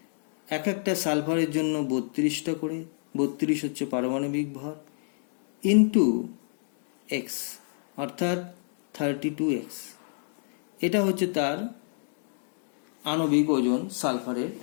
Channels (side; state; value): right; silent; digital silence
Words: এক একটা সালফারের জন্য 32টা করে, 32 হচ্ছে পারমাণবিক ভর, ইন্টু এক্স অর্থাৎ 32x। এটা হচ্ছে তার আণবিক ওজন সালফারের